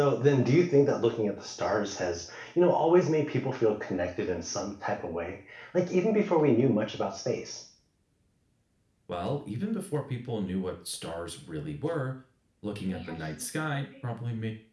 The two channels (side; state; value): both; identical; correlation 1.00